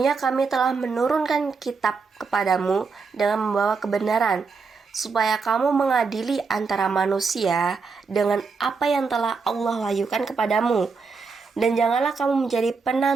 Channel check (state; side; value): quieter; left; 4.8 dB